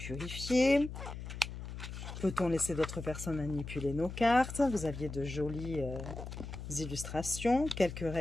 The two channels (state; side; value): noise; left; hum, 9 dB below the sound